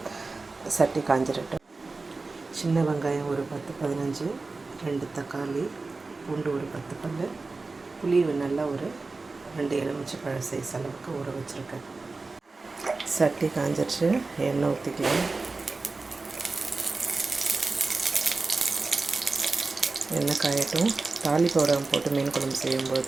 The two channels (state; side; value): quieter; left; 3.7 dB